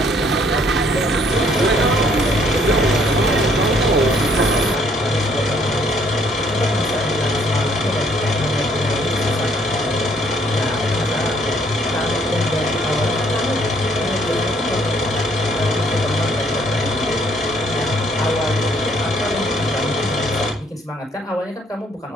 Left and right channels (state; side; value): normal; both; correlation 0.65